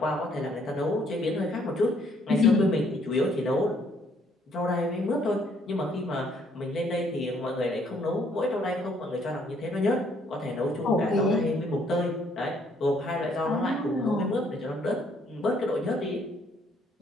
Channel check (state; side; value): normal; both; correlation 0.66